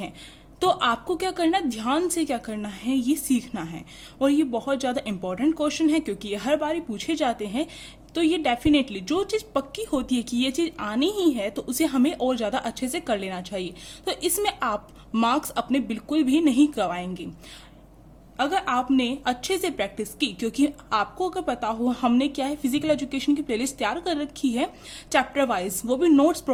तो आपको क्या करना है, ध्यान से क्या करना है ये सीखना है। और ये बहुत ज़्यादा इंपॉर्टेंट क्वेश्चन है क्योंकि ये हर बार पूछे जाते हैं। तो ये डेफिनेटली जो चीज़ पक्की होती है कि ये चीज़ आनी ही है तो उसे हमें और ज़्यादा अच्छे से कर लेना चाहिए। तो इसमें आप मार्क्स अपने बिल्कुल भी नहीं गवाएंगे अगर आपने अच्छे से प्रैक्टिस की, क्योंकि आपको अगर पता हो हमने क्या है फिजिकल एजुकेशन की प्लेलिस्ट तैयार कर रखी है चैप्टर वाइज, वो भी नोट्स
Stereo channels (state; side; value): identical; both; correlation 1.00